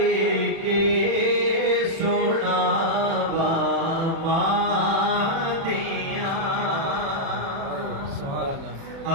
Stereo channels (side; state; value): left; late; 36 ms